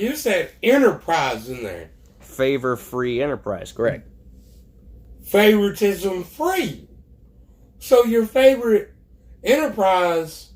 said enterprise in there. Favor free enterprise, correct. Favoritism free. So your favorite enterprise,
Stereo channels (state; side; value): identical; both; correlation 1.00